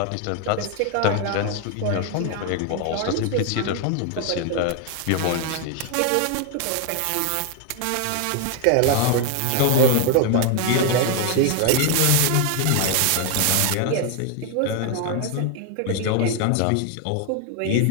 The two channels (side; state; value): both; different; correlation 0.01